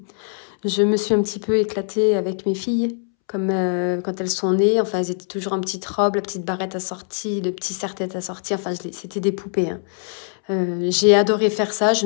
je me suis un petit peu éclatée avec mes filles, comme quand elles sont nées. Enfin, elles étaient toujours en petite robe, la petite barrette assortie, le petit serre-tête assorti. Enfin, c'était des poupées. Hein. J'ai adoré faire ça, je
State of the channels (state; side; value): silent; right; 64 dB below the other